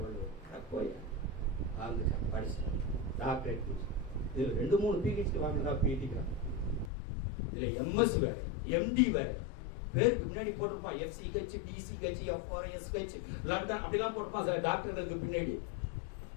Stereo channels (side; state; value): right; drops out; at 6.9 s